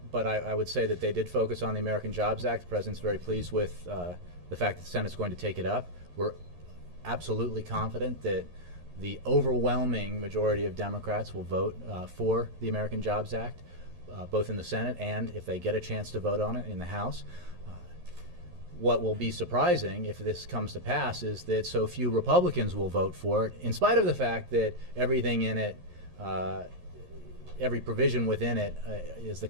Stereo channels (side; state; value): left; late; 11 ms